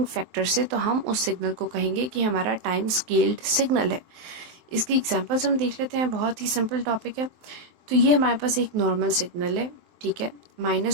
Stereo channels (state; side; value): late; left; 23 ms